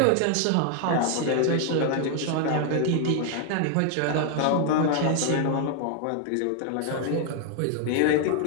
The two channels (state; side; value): different; both; correlation 0.00